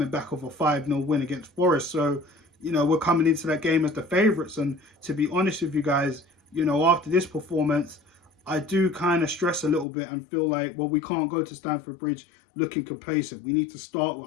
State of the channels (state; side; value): drops out; right; at 9.9 s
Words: back off a 5-0 win against Forest. So, you know, we're coming into that game as the favourites. And to be honest with you guys, you know, after this performance, I do kind of stress a little bit and feel like, well, we can't go to Stamford Bridge looking complacent. We need to start